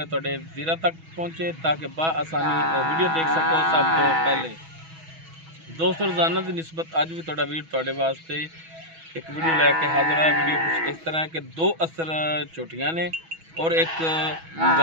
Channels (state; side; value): late; left; 6.2 ms